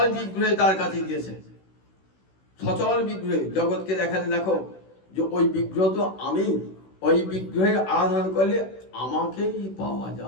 বিগ্রহে তার কাছে গিয়েছে। সচল বিগ্রহে জগৎকে দেখালেন, দেখো যে ওই বিগ্রহ তো আমি, ওই বিগ্রহের আরাধনা করলে আমাকেই পাওয়া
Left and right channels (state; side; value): late; right; 16 ms